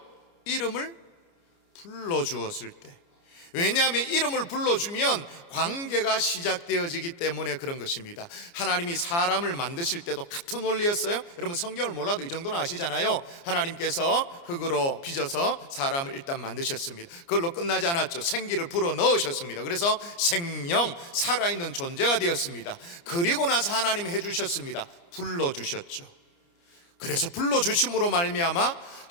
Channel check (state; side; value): late; right; 29 ms